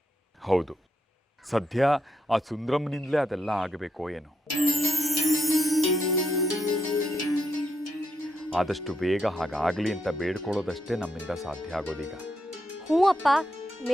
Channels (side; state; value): both; normal; correlation 0.82